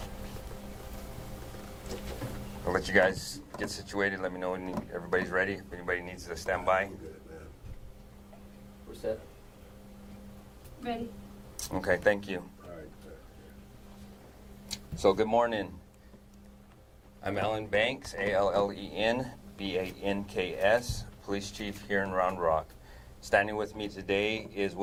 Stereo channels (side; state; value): both; identical; correlation 1.00